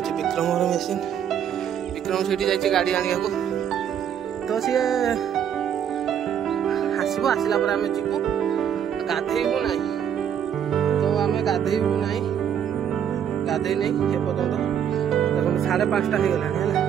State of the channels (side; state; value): left; quieter; 8.9 dB